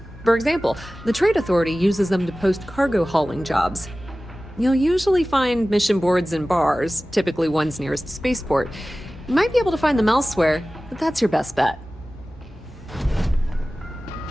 For example, the Trade Authority uses them to post cargo hauling jobs. You'll usually find mission boards in bars, typically ones nearest spaceport. You might be able to find them elsewhere, but that's your best bet.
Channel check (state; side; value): normal; both; correlation 0.97